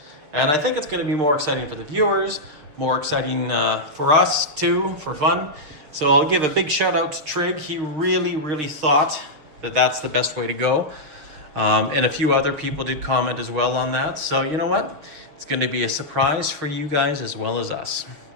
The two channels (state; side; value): late; left; 6.9 ms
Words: And I think it's going to be more exciting for the viewers, more exciting for us too, for fun. So I'll give a big shout out to Trig. He really, really thought that that's the best way to go. And a few other people did comment as well on that. So you know what? It's going to be a surprise for you guys as well as us.